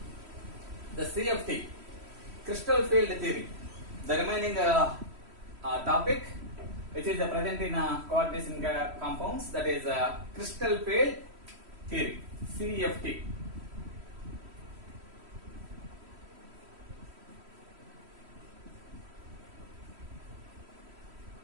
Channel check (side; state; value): left; late; 3.1 ms